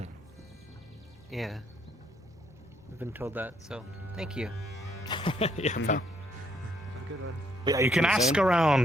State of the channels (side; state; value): both; normal; correlation 0.70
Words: Yeah. I've been told that, so thank you. Yeah, pal. Good one. Yeah, you can ask